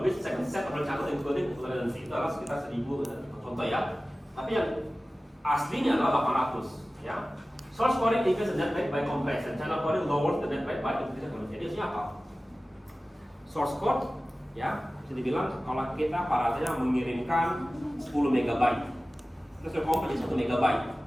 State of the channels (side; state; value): both; normal; correlation 0.96